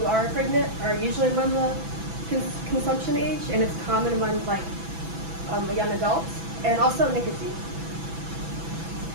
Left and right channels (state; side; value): late; left; 6.0 ms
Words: are pregnant are usually among the consumption age, and it's common among like young adults, and also nicotine.